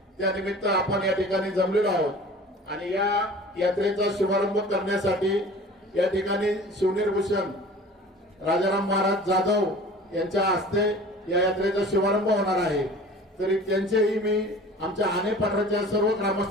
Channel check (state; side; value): normal; both; correlation 0.43